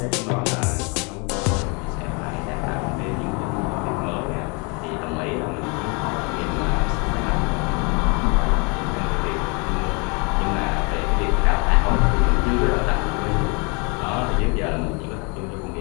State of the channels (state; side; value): quieter; right; 32.0 dB